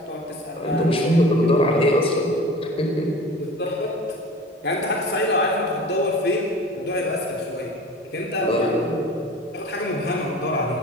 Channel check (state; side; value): normal; both; correlation 0.39